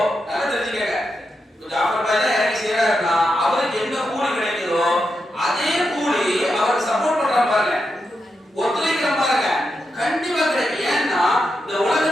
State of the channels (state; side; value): normal; both; correlation 0.86